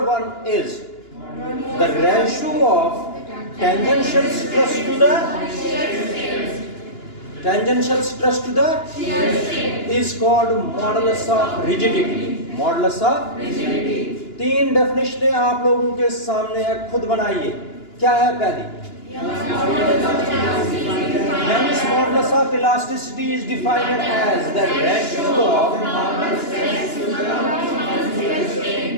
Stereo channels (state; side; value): late; right; 2.9 ms